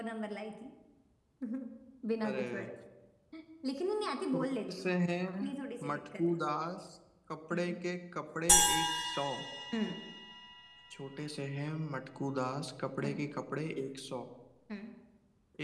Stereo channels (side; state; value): both; identical; correlation 1.00